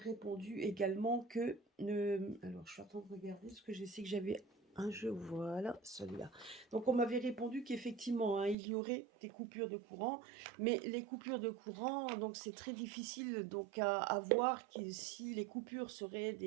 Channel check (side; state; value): left; drops out; at 8.6 s